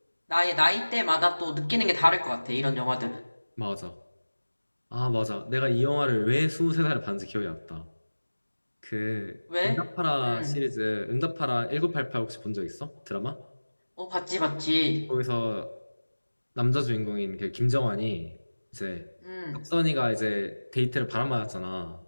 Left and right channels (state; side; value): inverted; both; correlation -1.00